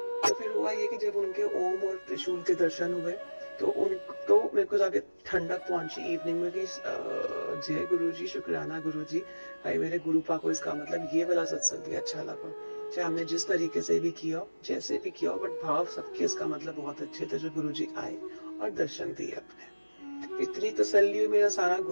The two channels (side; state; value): both; inverted; correlation -1.00